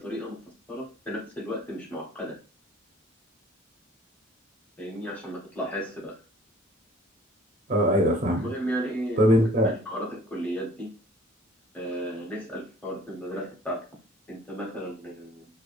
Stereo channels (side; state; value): both; normal; correlation 0.53